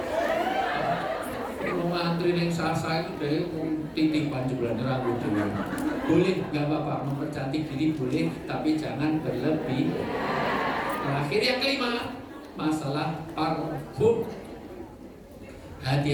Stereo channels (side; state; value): both; identical; correlation 1.00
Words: Kalau ngantri yang sasa itu deh, titipan jumlah rambut dulu. Boleh, nggak apa-apa, mempercantik diri boleh, tapi jangan berlebih. Terakhir yang kelima, masalah parfum.